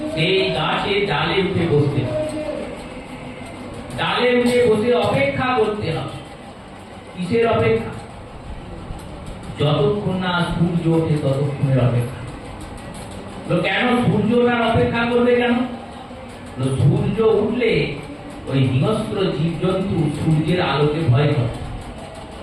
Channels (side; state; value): both; identical; correlation 1.00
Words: সেই গাছের ডালে উঠে বসতে হবে। ডালে উঠে বসে অপেক্ষা করতে হবে। কিসের অপেক্ষা? যতক্ষণ না সূর্য ওঠে ততক্ষণের অপেক্ষা। কেন সূর্যটার অপেক্ষা করবে? কেন? সূর্য উঠলে ওই হিংস্র জীবজন্তু সূর্যের আলোকে ভয় করে।